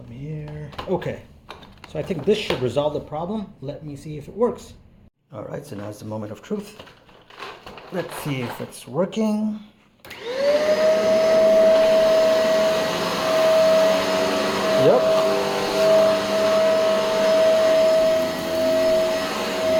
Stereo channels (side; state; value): both; identical; correlation 1.00